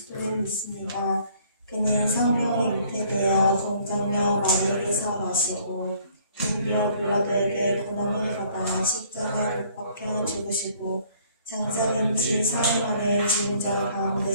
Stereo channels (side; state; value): both; inverted; correlation -0.59